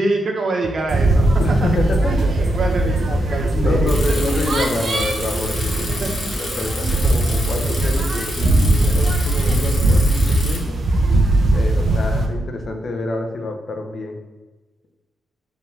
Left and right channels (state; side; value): normal; both; correlation 0.82